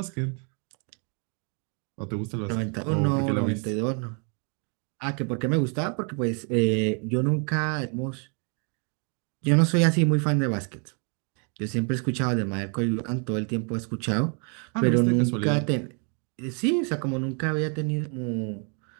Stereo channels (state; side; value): quieter; left; 39.3 dB